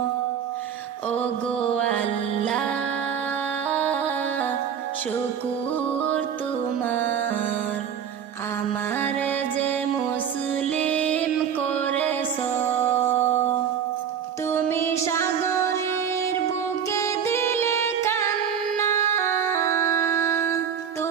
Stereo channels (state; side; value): quieter; left; 8.1 dB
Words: ও গো আল্লাহ শুকুর তোমার, আমারে যে মুসলিম করেছ। তুমি সাগরের বুকে দিলে কান্না,